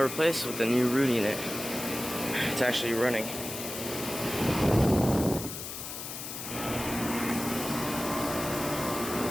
with the new Ruud unit. It's actually running.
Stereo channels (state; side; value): noise; left; hiss, 8 dB below the sound